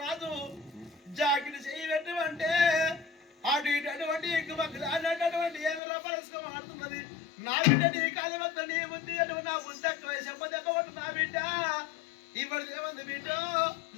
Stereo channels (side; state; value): right; drops out; at 5.8 s